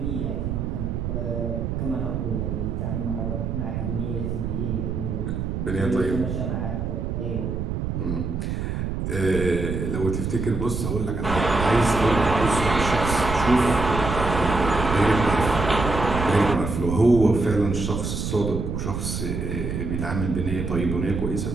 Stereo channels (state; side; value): noise; right; rumble, 3 dB below the sound